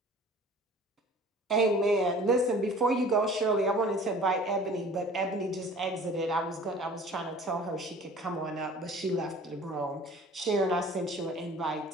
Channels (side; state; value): both; normal; correlation 0.46